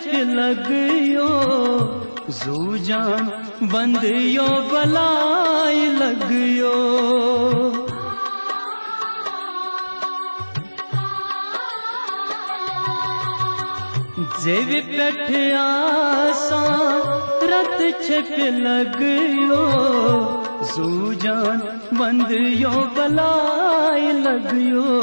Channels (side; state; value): both; inverted; correlation -1.00